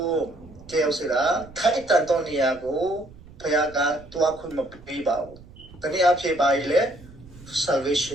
ကျေးဇူးလားထိုက်တန်သောနေရာကိုဘုရားကတွားခွင့်မပေးပါဘူးတနည်းအားဖြင့်ပါလေ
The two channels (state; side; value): noise; right; rumble, 21 dB below the sound